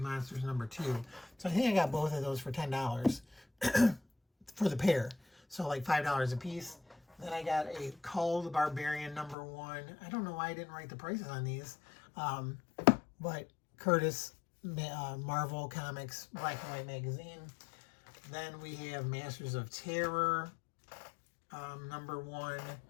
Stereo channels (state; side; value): drops out; right; at 9.3 s